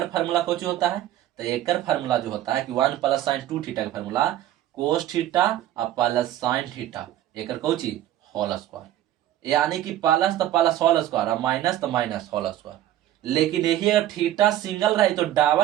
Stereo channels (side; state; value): left; quieter; 13.1 dB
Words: फार्मूला कुछ होता है, तो एक फार्मूला जो होता है कि 1 प्लस साइन 2 थीटा का फार्मूला कोस थीटा और प्लस साइन थीटा एक कौची होल स्क्वायर, यानी कि प्लस तो प्लस होल स्क्वायर और माइनस तो माइनस होल स्क्वायर। लेकिन यही अगर थीटा सिंगल रहे तो